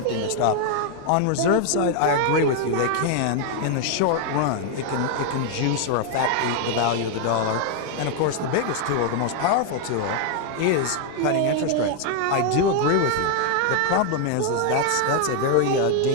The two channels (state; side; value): different; both; correlation 0.00